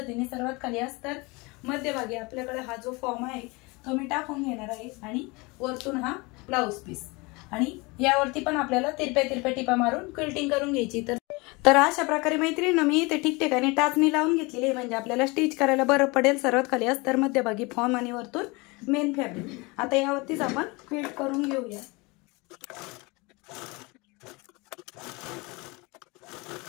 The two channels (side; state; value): right; quieter; 26.0 dB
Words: सर्वात खाली अस्तर, मध्यभागी आपल्याकडे हा जो फॉर्म आहे तो मी टाकून घेणार आहे आणि वरतून हा ब्लाउज पीस आणि यावरती पण आपल्याला तिरप्या टिपा मारून क्विल्टिंग करून घ्यायची। तर अशा प्रकारे मैत्रिणींनो, मी इथे ठिकठिकाणी टाचणी लावून घेतलेली आहे, म्हणजे आपल्याला स्टिच करायला बरं पडेल। सर्वात खाली अस्तर, मध्यभागी फॉर्म आणि वरतून मेन फॅब्रिक। आता यावरतीच आपण क्विल्ट करून घेऊया।